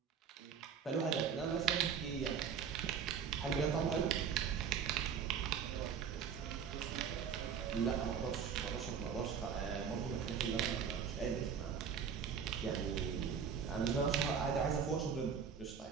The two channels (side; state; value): left; quieter; 7.0 dB